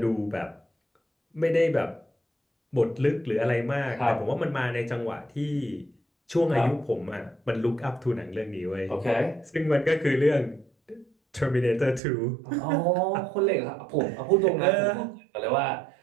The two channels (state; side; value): drops out; left; at 12.0 s